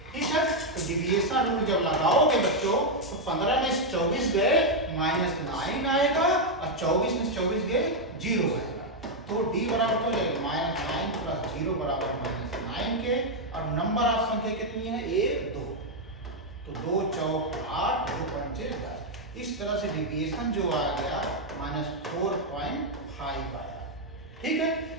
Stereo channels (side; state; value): both; normal; correlation 0.00